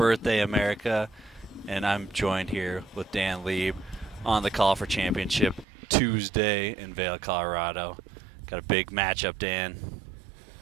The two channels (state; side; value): drops out; left; at 5.7 s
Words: America. And I'm joined here with Dan Lieb on the call for championship Tuesday in Vail, Colorado. Got a big matchup, Dan.